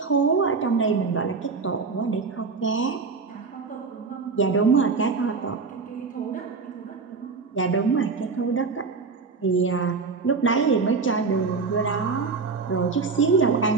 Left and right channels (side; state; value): left; quieter; 4.6 dB